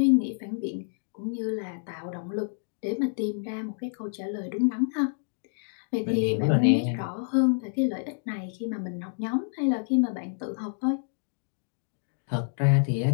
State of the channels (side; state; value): right; silent; digital silence